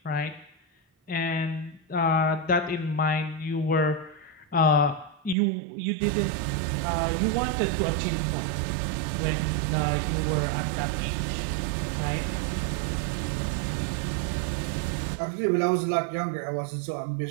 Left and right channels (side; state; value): left; drops out; at 5.4 s